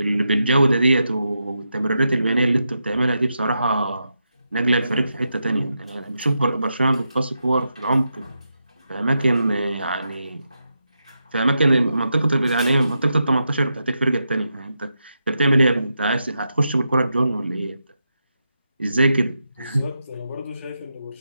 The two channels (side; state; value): both; inverted; correlation -0.86